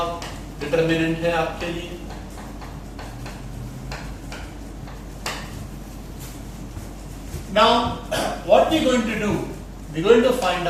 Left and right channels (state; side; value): identical; both; correlation 1.00